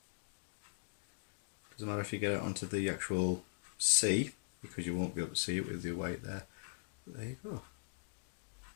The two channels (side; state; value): right; silent; digital silence